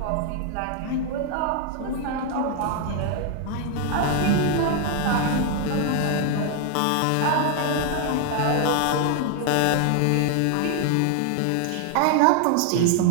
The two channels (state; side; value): different; both; correlation 0.00